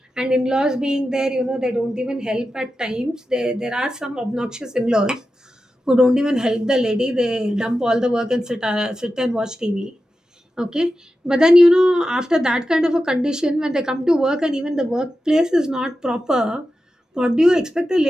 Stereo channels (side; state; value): both; normal; correlation 0.91